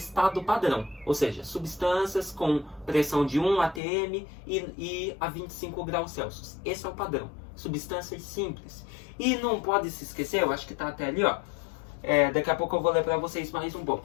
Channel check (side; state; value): right; drops out; at 3.8 s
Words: padrão. Ou seja, substâncias com pressão de 1 atm e a 25 graus Celsius. Esse é o padrão. Substâncias simples. E não pode se esquecer, eu acho que está até ali, ó. Daqui a pouco eu vou ler para vocês mais um pouco.